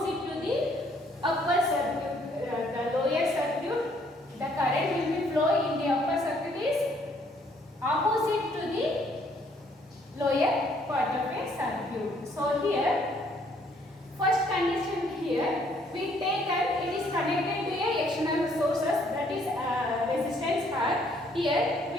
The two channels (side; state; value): both; normal; correlation 0.65